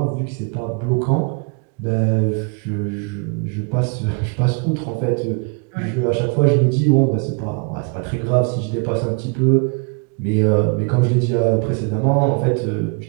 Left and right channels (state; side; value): quieter; left; 33.4 dB